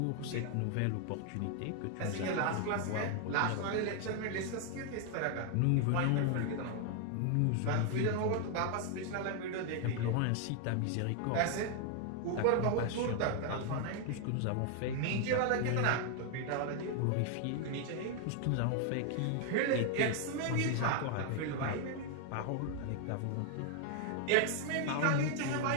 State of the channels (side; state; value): both; different; correlation 0.00